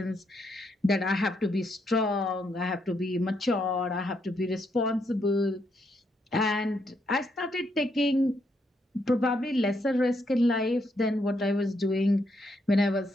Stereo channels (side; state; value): both; normal; correlation 0.77